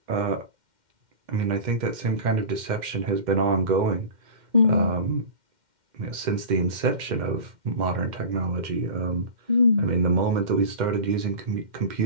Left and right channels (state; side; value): late; left; 2.1 ms